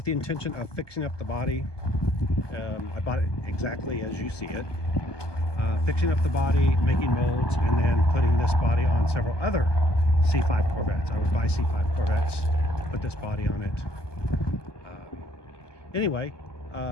the intention of fixing up the body. I bought it exactly as you see it. Fixing up the body, making molds, and then putting this body on several other C5 Corvettes. I would buy C5 Corvettes, put this body on it. Anyway,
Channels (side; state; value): right; late; 1.2 ms